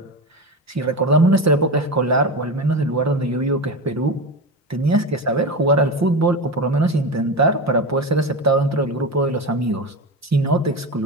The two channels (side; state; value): both; normal; correlation 0.22